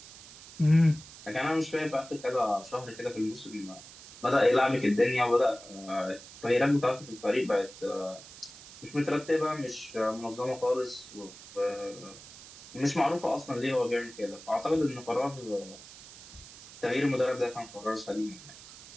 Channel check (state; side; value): noise; right; hiss, 17 dB below the sound